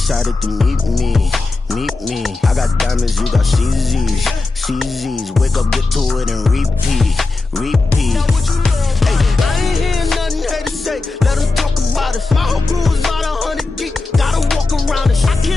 to meet me. Meet me. I got diamonds, you got CZs. CZs. Wake up, get to it and repeat. Repeat. Hey, I ain't hearing nothing haters say. Let them talk about us. My whole crew is about 100 deep. Gotta walk around it. I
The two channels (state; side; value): quieter; right; 3.5 dB